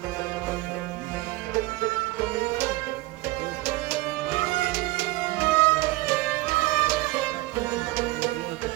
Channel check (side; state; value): left; quieter; 19.8 dB